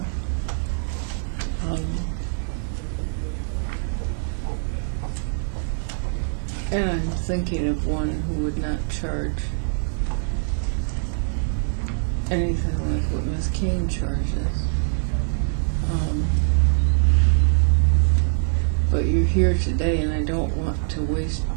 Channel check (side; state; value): left; silent; digital silence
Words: And I'm thinking of one who would not charge anything like what Ms. Kane charges. But you're here today, and I don't want to waste